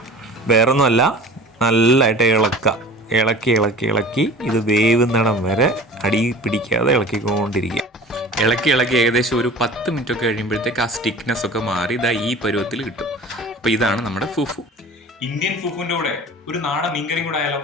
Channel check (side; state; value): both; normal; correlation 0.41